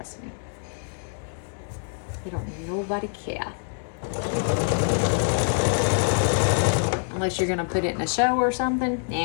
me. You don't nobody care. Unless you're gonna put it in a show or something.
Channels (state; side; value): silent; right; digital silence